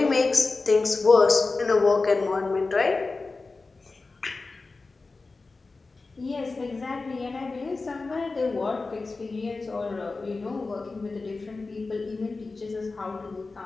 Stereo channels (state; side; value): quieter; right; 3.8 dB